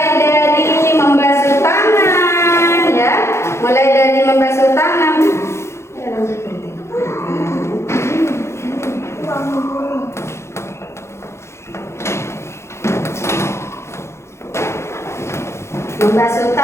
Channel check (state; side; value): late; right; 0.13 ms